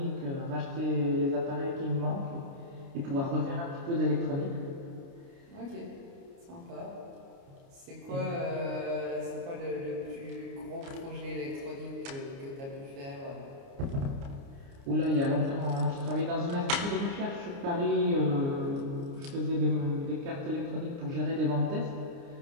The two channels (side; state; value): left; late; 29 ms